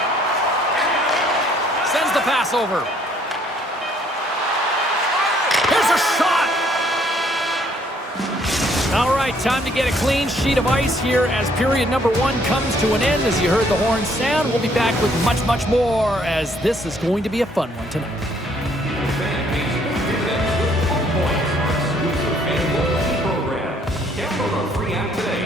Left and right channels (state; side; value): normal; both; correlation 0.64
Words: Sends the pass over. Here's a shot. All right, time to get a clean sheet of ice here as period number 1 comes to an end. As you heard the horn sound, we'll be back with much, much more, as this is going to be a fun one tonight. Download our free app